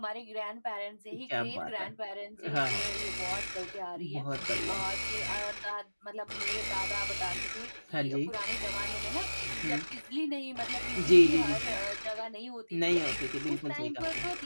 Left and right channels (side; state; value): both; inverted; correlation -1.00